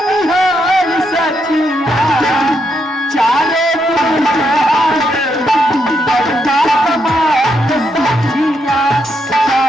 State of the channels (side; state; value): both; normal; correlation 0.79